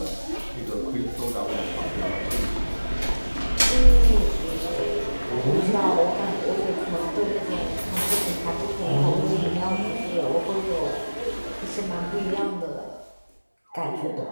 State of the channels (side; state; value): both; inverted; correlation -1.00